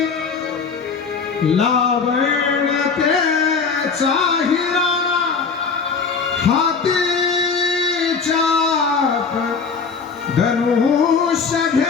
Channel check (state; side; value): quieter; right; 5.3 dB